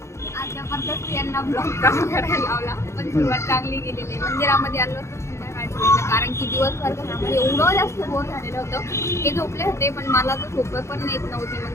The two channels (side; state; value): right; late; 0.13 ms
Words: आज जबरदस्त यांना ब्लॉग करायला लावला, पण सुरुवात चांगली गेलेली. मंदिरामध्ये आलो होतो संध्याकाळच्या वेळेला, कारण की दिवसभर घरामध्ये एवढं जास्त बोर झालेलं होतं. ते झोपले होते पण मला तर झोप पण येत नव्हती,